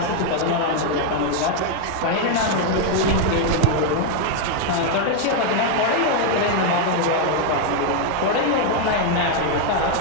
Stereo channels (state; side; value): different; both; correlation 0.01